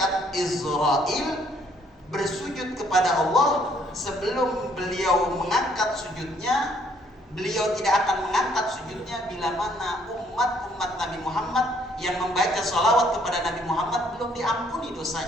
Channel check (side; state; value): both; normal; correlation 0.65